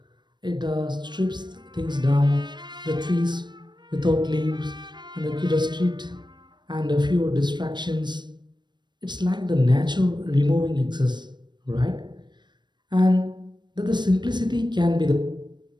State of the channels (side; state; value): left; late; 0.22 ms